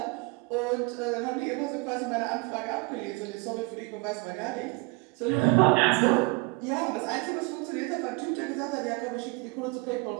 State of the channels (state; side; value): quieter; left; 27.1 dB